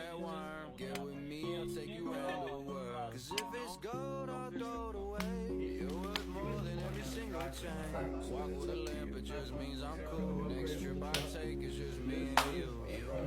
worm. Get with me, I'll take you around the world. Cause if it's gold, I'll throw it away. You're worth more than every single chain. Walk with a lamp, it just means I'm cool. Next trip I take is just me and you. You know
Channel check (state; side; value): identical; both; correlation 1.00